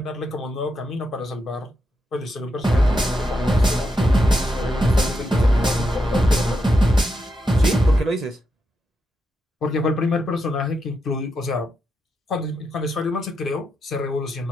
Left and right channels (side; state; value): both; normal; correlation 0.84